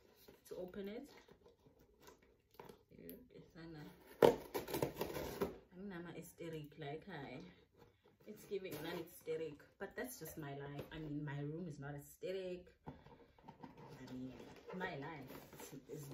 to open it. I'm hysteric, like it's giving non-hysteric, but that's just my life. I mean, my room is not hysteric. I mean, my life is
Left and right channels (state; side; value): identical; both; correlation 1.00